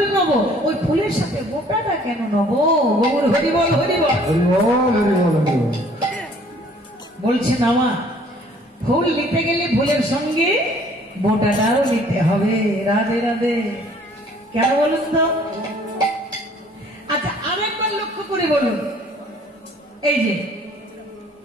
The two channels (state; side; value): normal; both; correlation 0.57